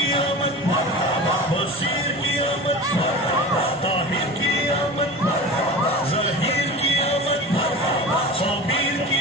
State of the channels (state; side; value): normal; both; correlation 0.33